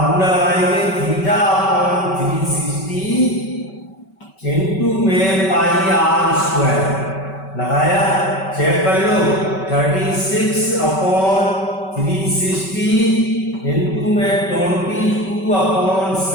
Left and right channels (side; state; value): right; late; 5.2 ms